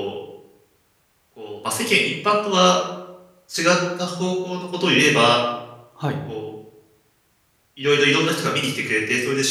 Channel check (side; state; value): both; identical; correlation 1.00